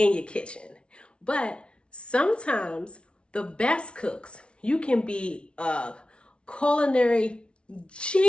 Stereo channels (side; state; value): right; late; 0.058 ms